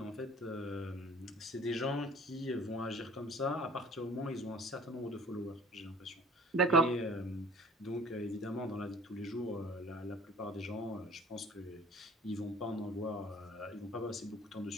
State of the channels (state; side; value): normal; both; correlation 0.49